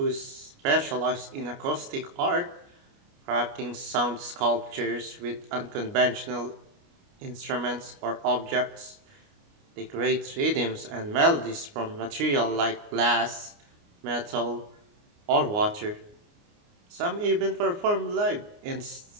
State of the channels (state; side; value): late; left; 29 ms